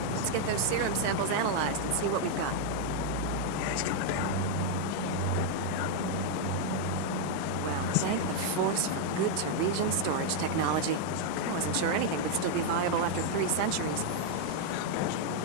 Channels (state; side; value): different; both; correlation 0.00